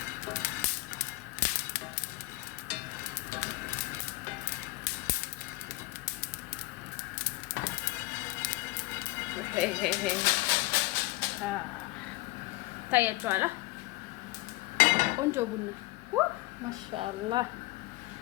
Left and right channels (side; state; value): right; quieter; 20.9 dB